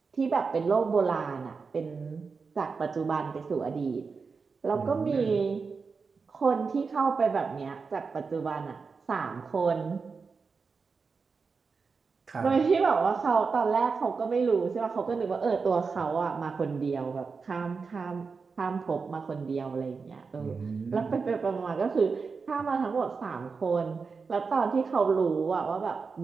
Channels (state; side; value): quieter; left; 4.9 dB